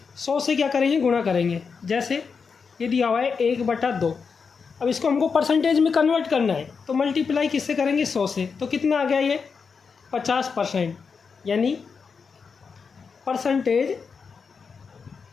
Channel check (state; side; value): quieter; right; 5.5 dB